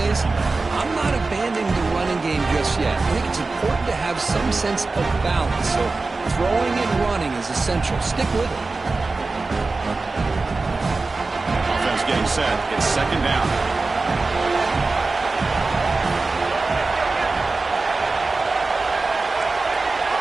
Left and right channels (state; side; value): quieter; left; 3.7 dB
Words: I'm not abandoning the running game just yet. I think it's important to have some sense of balance. So throwing and running is essential. Stick with it. Offense getting set. It's second down.